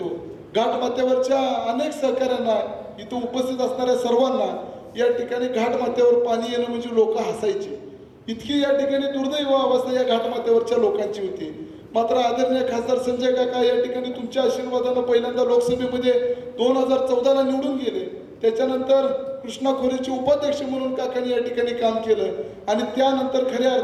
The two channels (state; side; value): identical; both; correlation 1.00